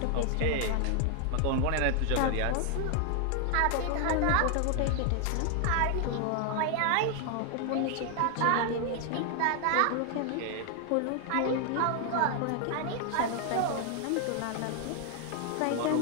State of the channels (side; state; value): both; different; correlation 0.00